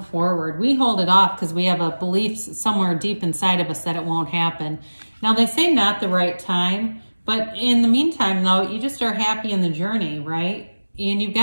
forward. We hold it off because we have a belief somewhere deep inside of us that it won't happen. Now they say not the right time, but in the meantime though, you just are happy in the journey, right? And you've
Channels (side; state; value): both; inverted; correlation -1.00